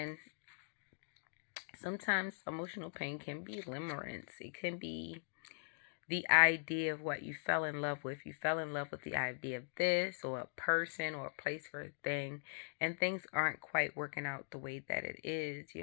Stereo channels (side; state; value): right; silent; digital silence